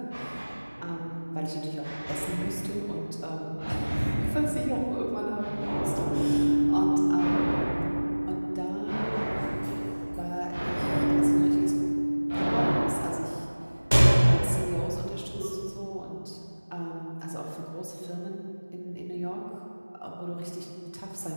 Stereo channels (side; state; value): both; inverted; correlation -1.00